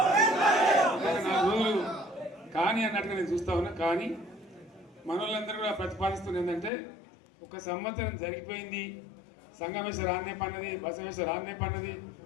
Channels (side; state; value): right; drops out; at 6.7 s